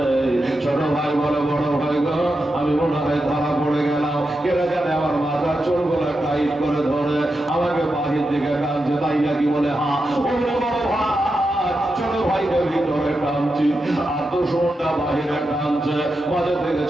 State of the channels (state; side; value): normal; both; correlation 0.88